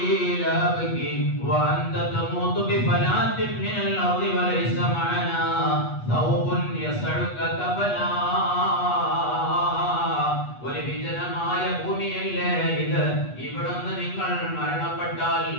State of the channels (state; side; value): late; right; 8.2 ms